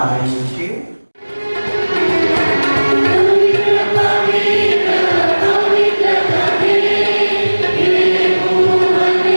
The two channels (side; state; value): both; inverted; correlation -1.00